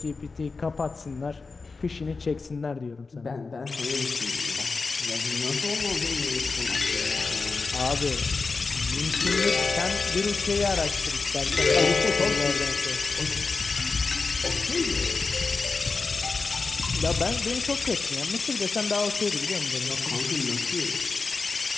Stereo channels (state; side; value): quieter; right; 4.2 dB